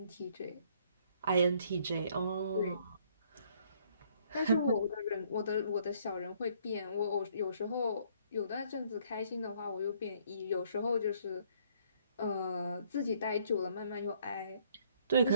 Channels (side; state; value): both; inverted; correlation -0.64